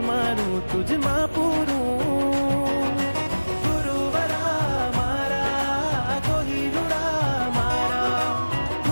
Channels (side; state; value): both; inverted; correlation -1.00